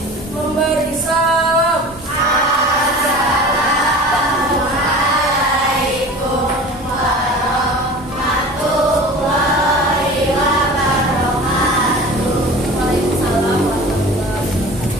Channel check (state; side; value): normal; both; correlation 0.39